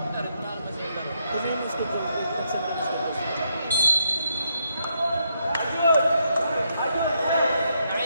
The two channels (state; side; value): inverted; both; correlation -0.78